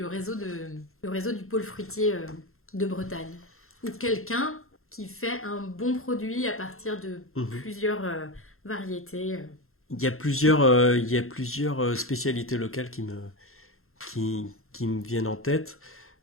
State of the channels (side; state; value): right; late; 0.62 ms